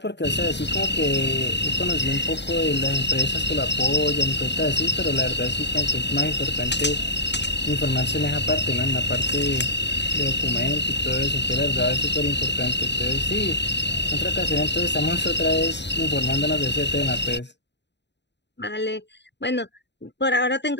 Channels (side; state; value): right; late; 0.51 ms